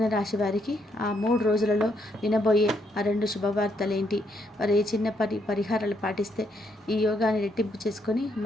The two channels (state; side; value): normal; both; correlation 0.74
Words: రాశి వారికి ఆ 3 రోజులలో వినబోయే ఆ 2 శుభవార్తలేంటి? వారు ఏ చిన్న పరిహారాలు పాటిస్తే ఈ యోగాన్ని రెట్టింపు చేసుకొని